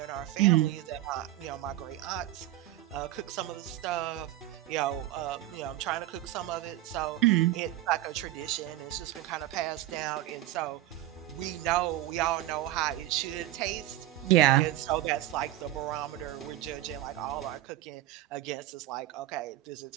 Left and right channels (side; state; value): left; quieter; 14.8 dB